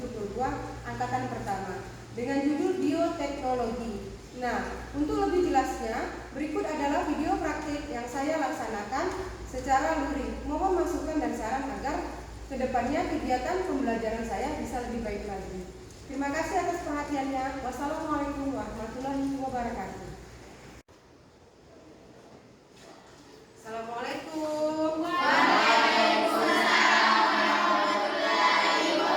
angkatan pertama dengan judul Bioteknologi. Nah, untuk lebih jelasnya, berikut adalah video praktik yang saya laksanakan secara luring. Mohon masukan dan saran agar kedepannya kegiatan pembelajaran saya bisa lebih baik lagi. Terima kasih atas perhatiannya. Wassalamualaikum warahmatullahi wabarakatuh. Assalamualaikum. Waalaikumsalam warahmatullahi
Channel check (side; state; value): both; identical; correlation 1.00